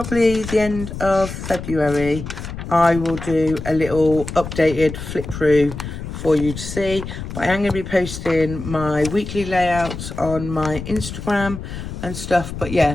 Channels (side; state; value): left; noise; rumble, 8 dB below the sound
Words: the end of February, I will do a little updated flip through for you to see. But I am going to be posting my weekly layouts on my Instagram and stuff. But